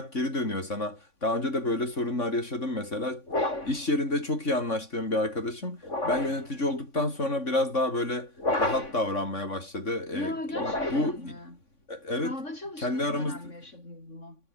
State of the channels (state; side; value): late; right; 3.5 ms